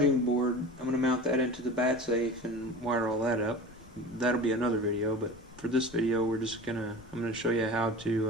board, I'm going to mount that into the bat safe and wire all that up. That'll be another video, but for this video I'm going to show you how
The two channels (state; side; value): noise; left; rumble, 23 dB below the sound